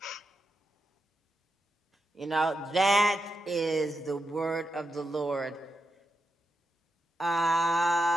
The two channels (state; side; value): normal; both; correlation 0.87